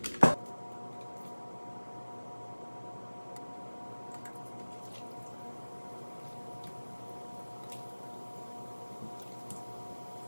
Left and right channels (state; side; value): inverted; both; correlation -1.00